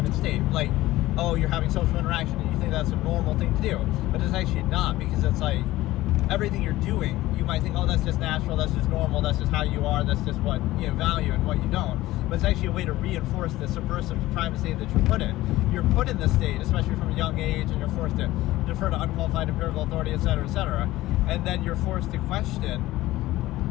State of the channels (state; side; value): quieter; right; 16.9 dB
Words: state. Like, oh, you're having social interaction and you think that's a normal thing to do, but it's actually not, because it's like, everything you're doing, you might think, oh, that's just natural, that's just normal, that's just how you are, that's just what you value and what you don't. But it's actually a way to reinforce the subversive private state that you're put in. You're put in this state, especially from a young age, and you're forced to defer to unqualified empirical authority, etc., etc. And then you're forced to question,